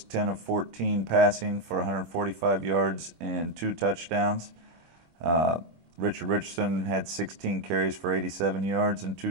10 of 14 passing for 145 yards and 2 touchdowns. Richard Richardson had 16 carries for 87 yards and 2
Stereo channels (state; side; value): late; left; 26 ms